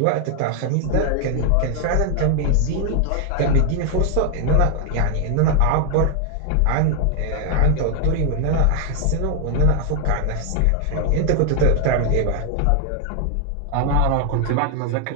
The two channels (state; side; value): different; both; correlation 0.00